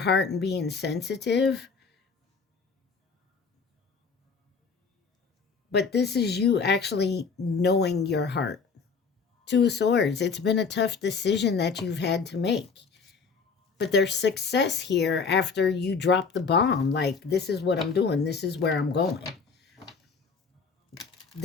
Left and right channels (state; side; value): quieter; right; 5.3 dB